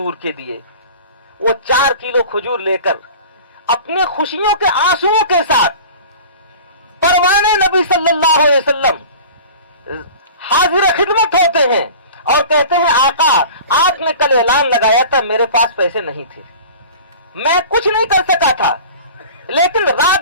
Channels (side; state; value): both; inverted; correlation -0.40